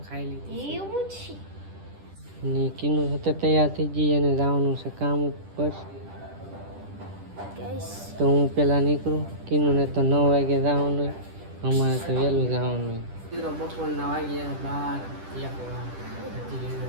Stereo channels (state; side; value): late; left; 10 ms